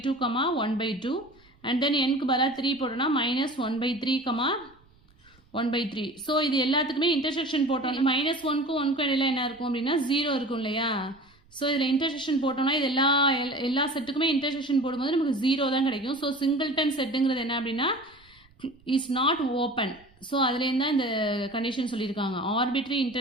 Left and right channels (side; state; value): right; noise; rumble, 30 dB below the sound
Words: comma 1 by 2. And then என்க்கு பதிலாக 3 போட்டோன்னா minus 1 by 3 comma 1 by 3. So இது எல்லாத்துக்குமே இன்டர்செக்ஷன் போட்டோம். minus 1க்கும் 1க்கும் இடையில என்ன இருக்கும் அப்படின்னா 0 இருக்கும் இல்லையா. ஸோ இதில் இன்டர்செக்ஷன் போட்டோம்னா இது எல்லா செட்டுக்குமே இன்டர்செக்ஷன் போடும்போது நமக்கு 0 தான் கிடைக்கும். ஸோ சிங்கிள்டன் செட்டுங்கிறது என்ன அப்படின்னா இஸ் நாட் ஓப்பன். ஸோ அதுலேருந்து தான் இந்த கண்டிஷன் சொல்லியிருக்காங்க. Arbitrary